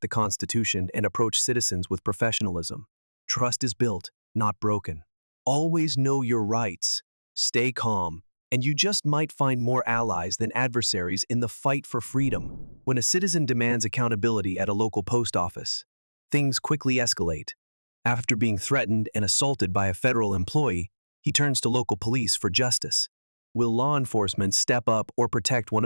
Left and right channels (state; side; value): inverted; both; correlation -1.00